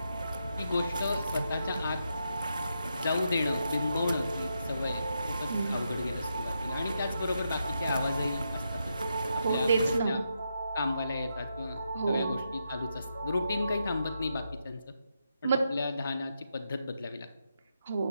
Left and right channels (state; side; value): inverted; both; correlation -0.83